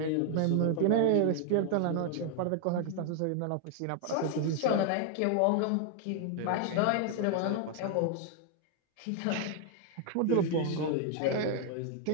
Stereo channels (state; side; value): different; both; correlation 0.00